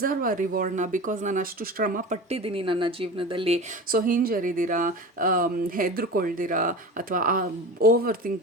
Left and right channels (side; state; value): both; normal; correlation 0.32